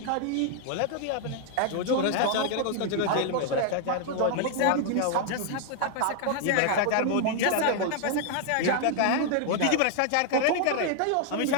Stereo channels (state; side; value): different; both; correlation 0.00